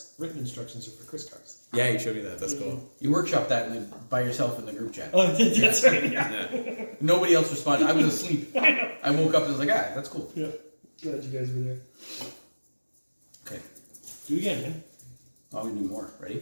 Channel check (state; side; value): inverted; both; correlation -1.00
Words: written instructions are for Chris cars. Yeah, you showed me that. That's cool. You workshop that by yourself in the group chat. Oh, that's right. Yeah. Yeah. Nobody else responded. I was asleep. I woke up and was like, that's cool. Yeah. Glad you guys were there. Okay. Do it again, man. I'm gonna do more. Ready?